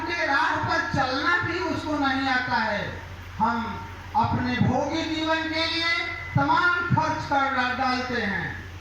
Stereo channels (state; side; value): identical; both; correlation 1.00